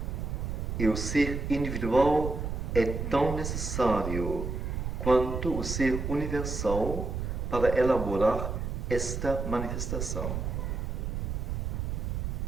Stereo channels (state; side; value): noise; right; rumble, 3 dB below the sound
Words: E o ser individual é tão necessário quanto o ser universal para elaborar esta manifestação.